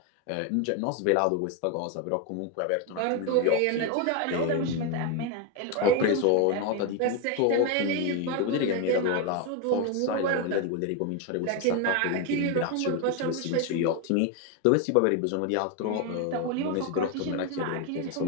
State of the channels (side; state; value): both; different; correlation 0.02